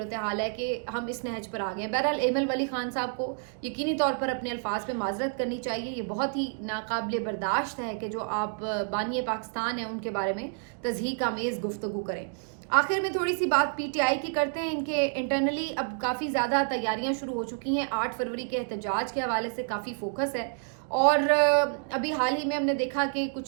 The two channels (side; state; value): left; silent; 59 dB below the other